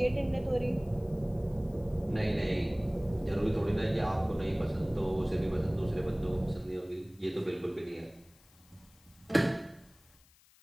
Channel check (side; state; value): left; noise; hiss, 29 dB below the sound